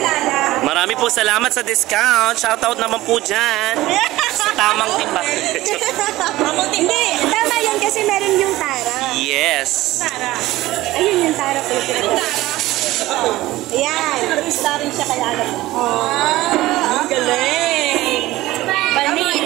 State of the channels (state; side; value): quieter; left; 17.2 dB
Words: Marami po salamat sa discount. Shoutout naman po dyan. Sa tamang timba. Hindi, tama yun kasi meron yung Tara. Yes. Ayun yung Tara po yung pinag-Tara. Ayan. Star rin siya kaya alam mo. Ang galing. Bani.